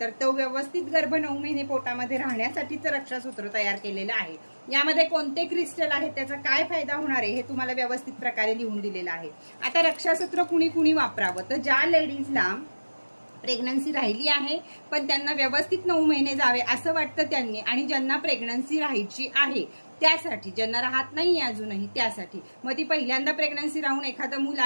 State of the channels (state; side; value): inverted; both; correlation -1.00